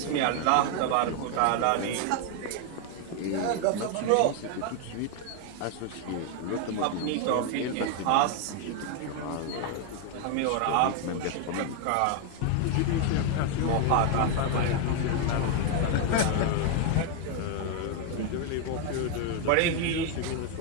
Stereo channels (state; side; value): different; both; correlation 0.01